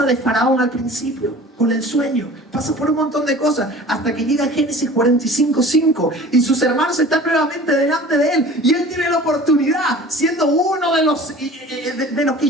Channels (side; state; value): both; normal; correlation 0.43